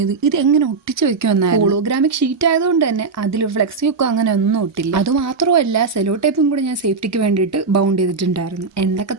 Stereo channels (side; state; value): left; quieter; 4.6 dB